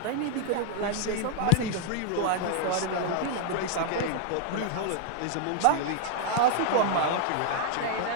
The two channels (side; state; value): both; different; correlation -0.01